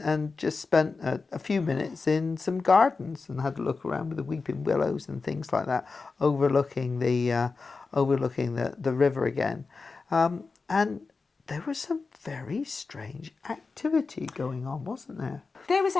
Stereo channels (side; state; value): right; quieter; 4.3 dB